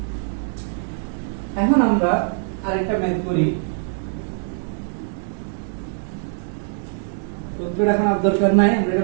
এখন আমরা আরেকটা ম্যাথ করি। সূত্রটা এখন আর দরকার নাই, আমরা এটা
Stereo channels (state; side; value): silent; left; 64 dB below the other